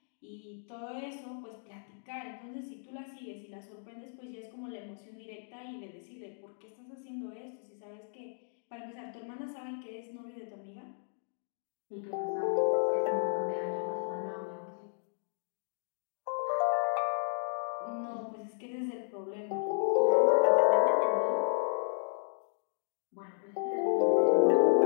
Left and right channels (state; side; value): silent; right; digital silence